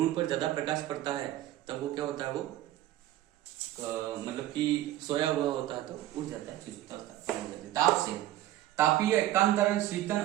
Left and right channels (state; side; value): quieter; left; 14.1 dB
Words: पर ज्यादा प्रकाश पड़ता है तब वो क्या होता है, वो मतलब कि सोया हुआ होता है तो उठ जाता है, सुषुप्तावस्था हो जाती है। ताप से, तापीय एकांतरण, शीतन